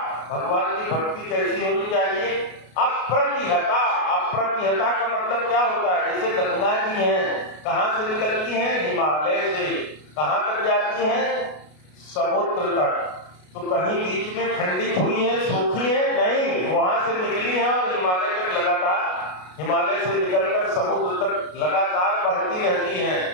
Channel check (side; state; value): right; late; 33 ms